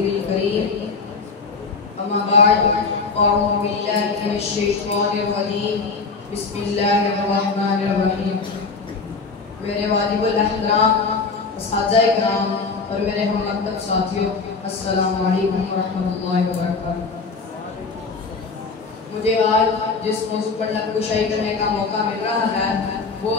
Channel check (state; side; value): quieter; right; 4.5 dB